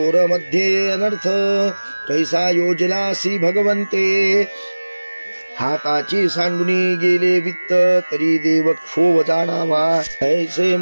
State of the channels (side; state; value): both; inverted; correlation -1.00